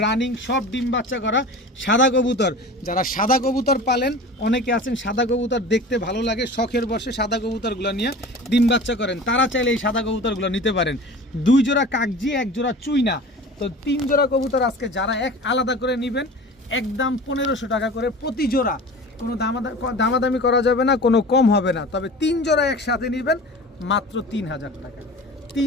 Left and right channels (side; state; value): both; normal; correlation 0.37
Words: রানিং, সব ডিম বাচ্চা করা সাদা কবুতর। যারা সাদা কবুতর পালেন, অনেকে আছেন সাদা কবুতর দেখতে ভালো লাগে, শখের বসে সাদা কবুতরগুলো নিয়ে ডিম বাচ্চা করেন, তারা চাইলে এই সাদা কবুতরগুলো নিতে পারেন। 2 জোড়া কাকজি, 1 জোড়া চুইনা। তো 3 জোড়া কবুতর আজকে যারা এক আলাদা করে নেবেন, একদম 1500 টাকা করে প্রতি জোড়া। কোনো দামাদামি করা যাবে না, কোনো কম হবে না। তবে 3 জোড়া একসাথে নেবেন মাত্র 3000 টাকা।